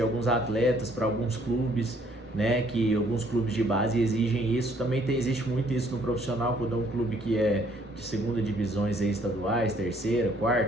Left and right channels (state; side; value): normal; both; correlation 0.63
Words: atletas para alguns clubes, né? Que alguns clubes de base exigem isso. Também existe muito isso no profissional, quando é um clube que é de segunda divisões aí, estaduais, terceira,